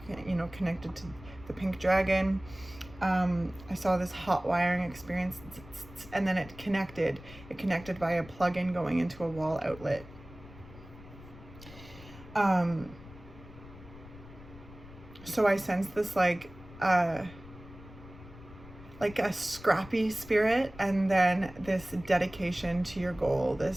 connected to the pink dragon. I saw this hot wiring experience, and then it connected by a plug-in going into a wall outlet. So I sensed this like a scrappy spirit, and then this dedication to your goal,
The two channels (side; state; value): left; noise; rumble, 18 dB below the sound